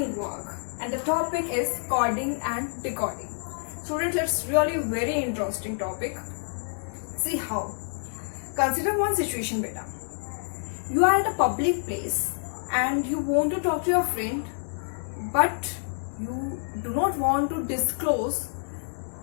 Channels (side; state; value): right; silent; digital silence